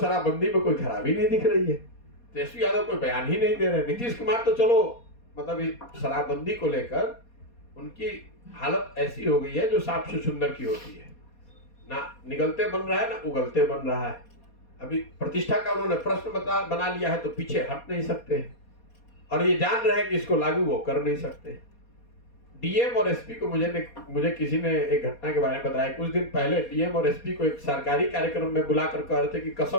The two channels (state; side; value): late; right; 4.2 ms